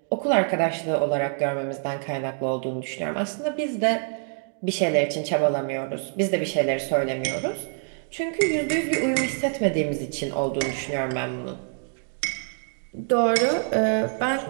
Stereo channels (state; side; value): silent; left; 55 dB below the other